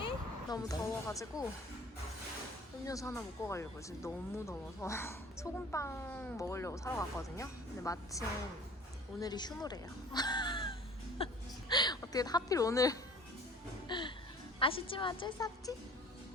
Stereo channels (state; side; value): normal; both; correlation 0.47